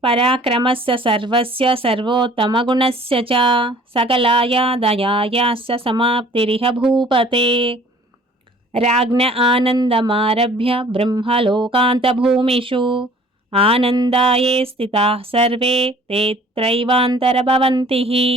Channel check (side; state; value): both; normal; correlation 0.52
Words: पराक्रमस्य सर्वस्य सर्वोत्तमगुणस्य च सकलाया दयायाश्च समाप्तिरिह भूपते राज्ञ आनन्दमारभ्य ब्रह्मलोकान्तभूमिषु आनन्दाये स्थिताः सर्वे ते त्रैवान्तरभवन्तिः